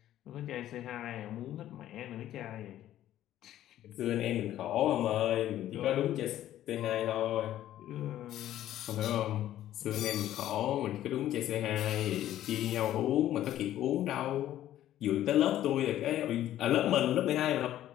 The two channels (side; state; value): right; quieter; 12.7 dB